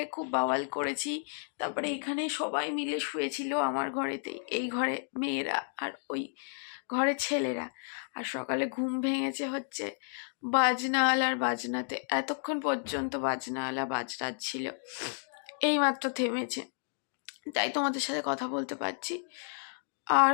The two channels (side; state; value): right; silent; digital silence